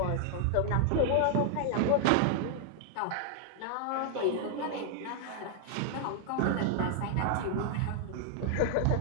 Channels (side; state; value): both; different; correlation 0.00